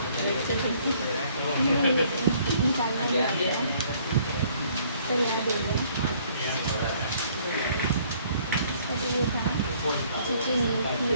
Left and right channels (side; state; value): both; inverted; correlation -0.61